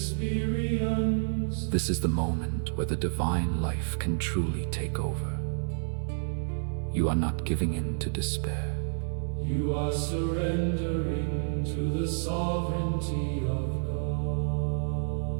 This is the moment where the divine life can truly take over. You are not giving in to despair. You are surrendering to the sovereignty of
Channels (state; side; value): silent; left; digital silence